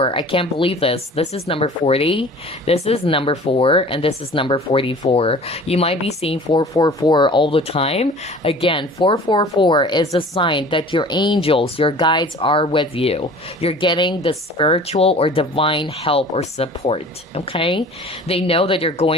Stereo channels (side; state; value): both; normal; correlation 0.45